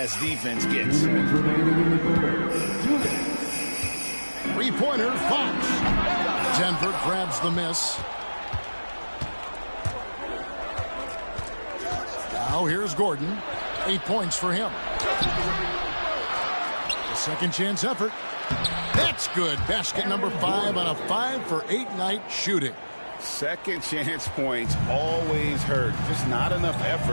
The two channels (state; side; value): inverted; both; correlation -1.00